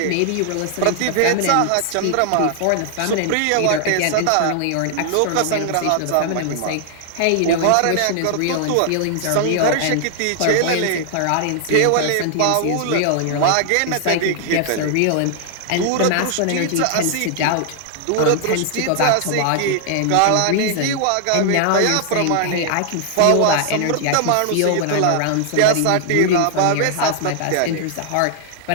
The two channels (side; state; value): both; different; correlation 0.00